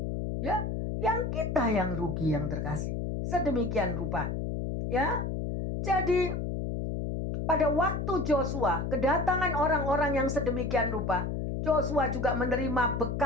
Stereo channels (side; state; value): left; noise; hum, 2 dB below the sound